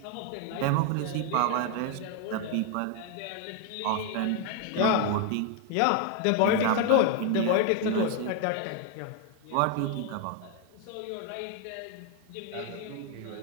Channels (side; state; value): both; different; correlation 0.00